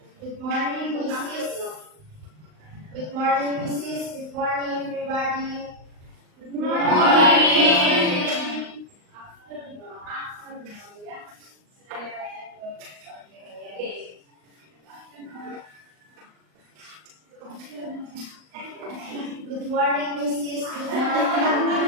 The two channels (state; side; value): late; left; 39 ms